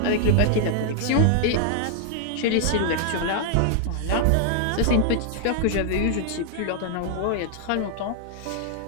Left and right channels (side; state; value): both; different; correlation -0.01